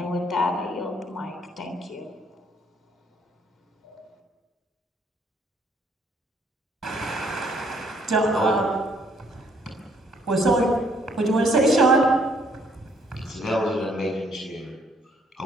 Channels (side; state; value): both; normal; correlation 0.66